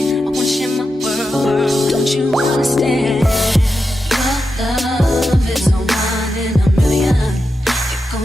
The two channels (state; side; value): normal; both; correlation 0.89